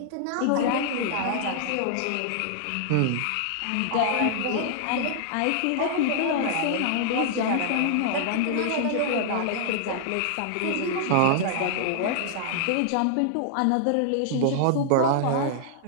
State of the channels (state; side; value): different; both; correlation -0.01